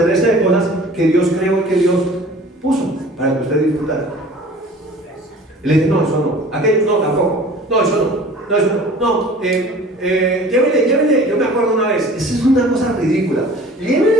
de cosas que Dios creó y que Dios puso para que usted disfrutara. Y le dije, no, eso no. Aquello no, tampoco. No, eso no. No, eso no. No, llévele. Yo me acuerdo una vez, esa es una cosa ridícula.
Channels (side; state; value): both; normal; correlation 0.46